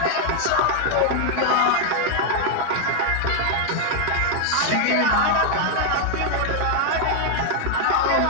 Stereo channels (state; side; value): different; both; correlation 0.00